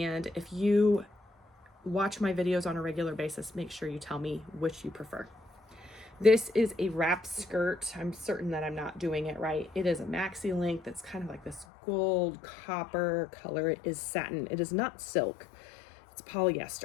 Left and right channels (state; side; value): drops out; right; at 11.7 s